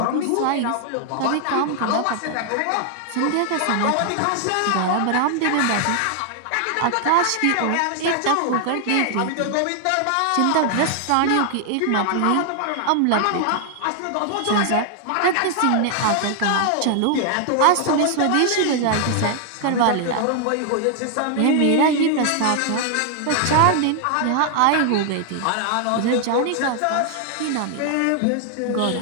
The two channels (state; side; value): different; both; correlation 0.00